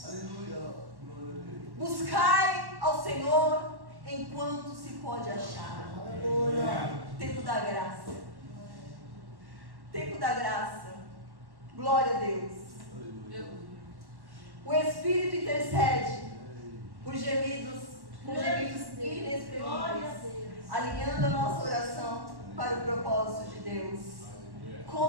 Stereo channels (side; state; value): left; late; 1.1 ms